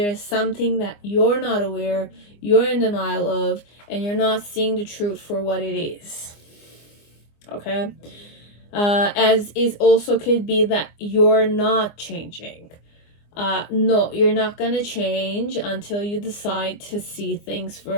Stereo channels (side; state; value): right; late; 24 ms